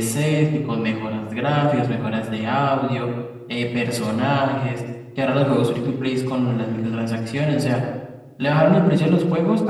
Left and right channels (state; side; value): identical; both; correlation 1.00